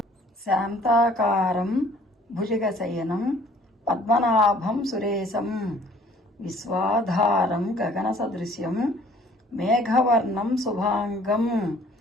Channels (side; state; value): both; normal; correlation 0.55